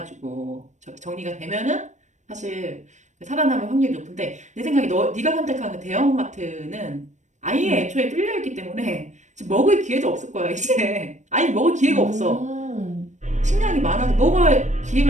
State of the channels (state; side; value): late; left; 0.35 ms